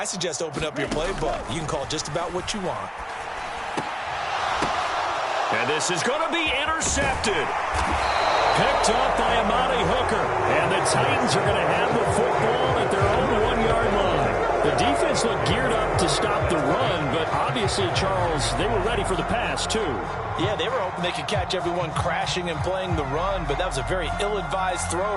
suggest open up your playbook. You can call just about what you want. And this is going to be intercepted. Picked up by Amani Hooker. And the Titans are going to have the football at their own 1-yard line. The defense looked geared up to stop the run, but obviously, Charles, they were ready for the pass, too. Yeah, they were hoping they could catch everyone crashing and playing the run, but that was a very ill-advised throw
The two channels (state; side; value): identical; both; correlation 1.00